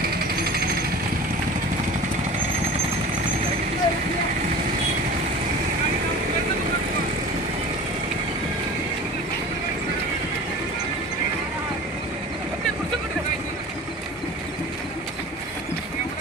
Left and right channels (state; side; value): normal; both; correlation 0.38